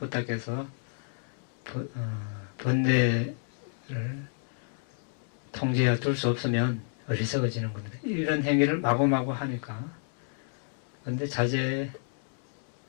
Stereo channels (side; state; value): right; silent; digital silence